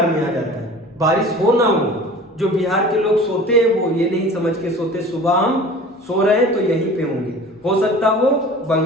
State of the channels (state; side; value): normal; both; correlation 0.41